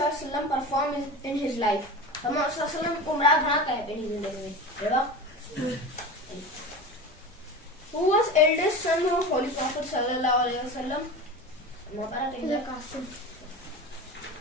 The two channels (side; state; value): both; normal; correlation 0.30